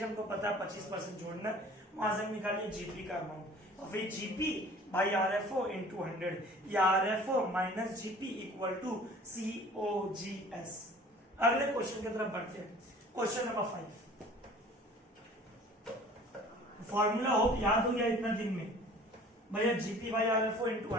हमको पता है 25% जोड़ना, वहां से निकालिए जीपी का अमाउंट। और फिर जीपी बाई आरएफओ इंटू 100 या RFO minus GP equal to COGS. अगले क्वेश्चन की तरफ बढ़ते हैं। Question number 5। फॉर्मूला होप याद हो गया इतना दिन में भैया? GP by RFO into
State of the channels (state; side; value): normal; both; correlation 0.48